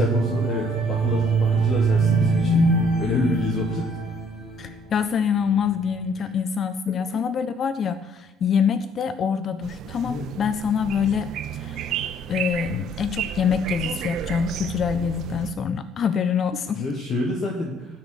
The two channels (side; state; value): both; normal; correlation 0.63